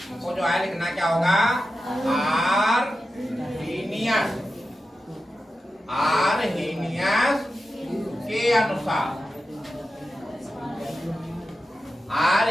जो है लिखना क्या होगा? आर्हेनियस के अनुसार।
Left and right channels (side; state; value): both; normal; correlation 0.91